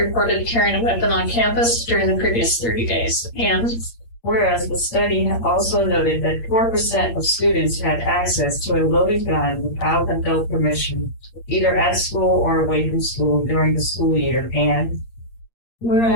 carrying a weapon on campus during the previous 30 days. And whereas the study also noted that 4% of students had access to a loaded gun without adult permission, either at school or away from school during the school year. And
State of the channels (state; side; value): late; right; 8.6 ms